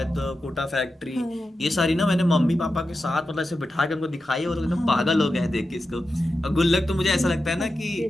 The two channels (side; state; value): both; normal; correlation 0.90